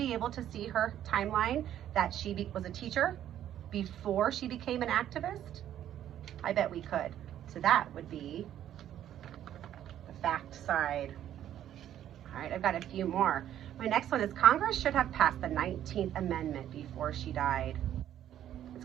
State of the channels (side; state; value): left; quieter; 11.2 dB